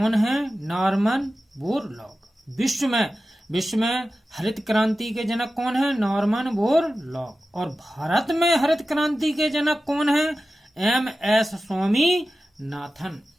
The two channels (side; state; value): both; normal; correlation 0.94